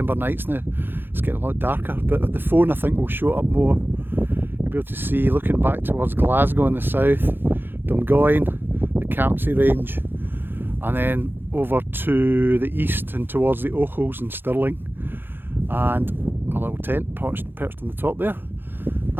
nights now, it's getting a lot darker. But the phone I think will show up more. You'll be able to see, looking back towards Glasgow in the south, Dungoyne, the Campsie range, and then over to the east and towards the Ochils and Stirling, and my little tent perched on the top there.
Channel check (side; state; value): left; late; 0.10 ms